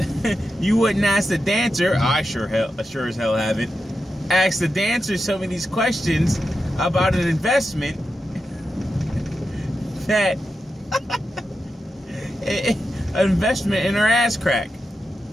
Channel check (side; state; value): both; normal; correlation 0.89